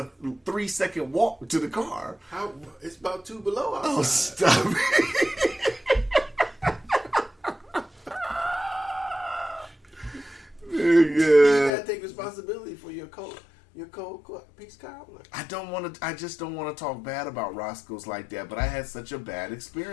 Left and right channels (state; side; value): drops out; right; at 11.7 s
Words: 3-second walk to the car. How? It's about 2 below outside. Oh, stop it. You gotta take responsibility for your cold peach cobbler. I just don't want to talk bad about Roscoe's like that, but I had such a bad